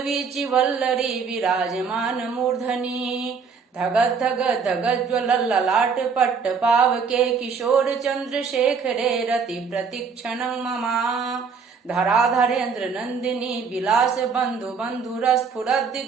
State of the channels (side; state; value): left; quieter; 5.6 dB